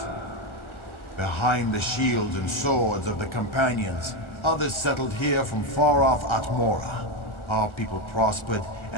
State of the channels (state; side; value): late; right; 1.4 ms